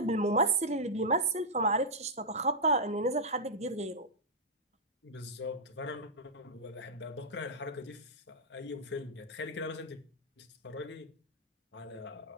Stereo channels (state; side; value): normal; both; correlation -0.08